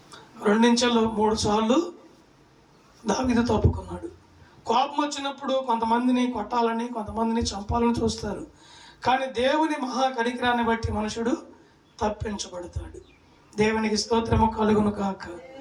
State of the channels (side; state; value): both; identical; correlation 1.00